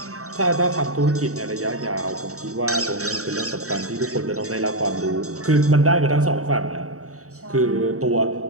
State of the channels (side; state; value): left; late; 0.65 ms